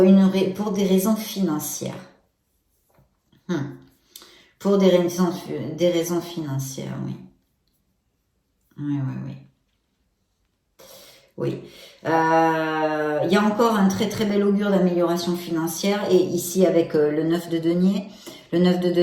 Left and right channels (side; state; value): both; identical; correlation 1.00